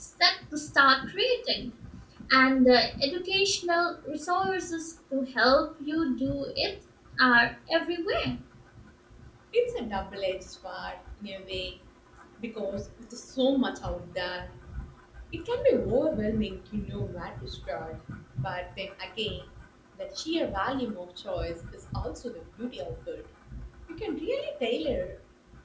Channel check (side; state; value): both; identical; correlation 1.00